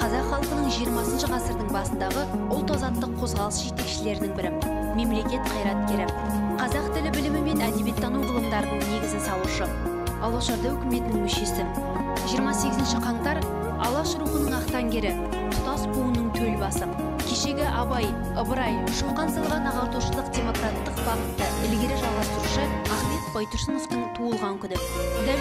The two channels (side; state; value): both; identical; correlation 1.00